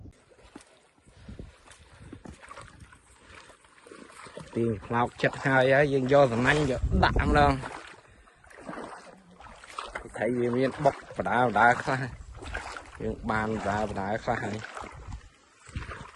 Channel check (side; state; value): both; identical; correlation 1.00